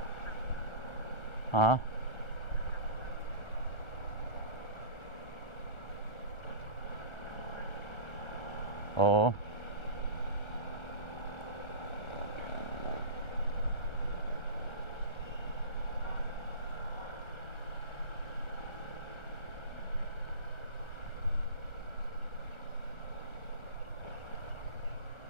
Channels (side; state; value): right; late; 1.4 ms